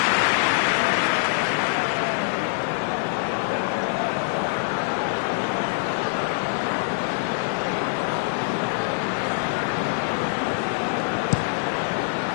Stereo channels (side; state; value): right; silent; 62 dB below the other